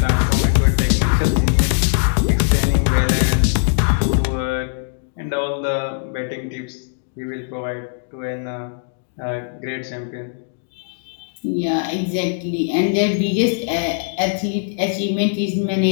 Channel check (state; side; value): silent; right; digital silence